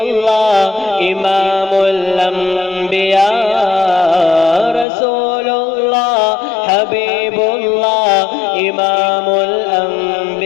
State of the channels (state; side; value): drops out; right; at 4.9 s